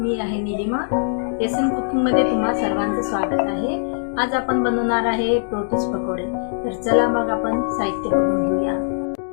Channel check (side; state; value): right; silent; digital silence